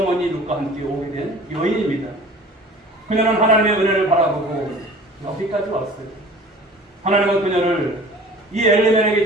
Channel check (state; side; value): normal; both; correlation 0.45